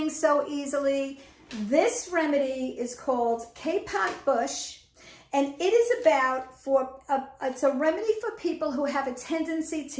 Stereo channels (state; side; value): identical; both; correlation 1.00